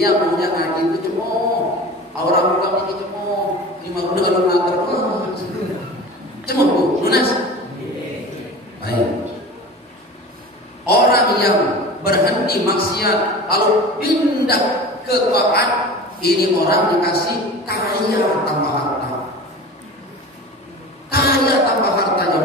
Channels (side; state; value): both; normal; correlation 0.36